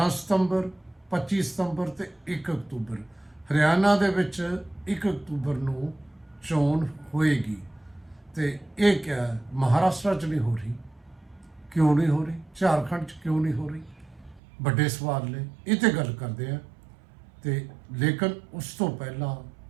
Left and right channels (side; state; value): left; drops out; at 14.4 s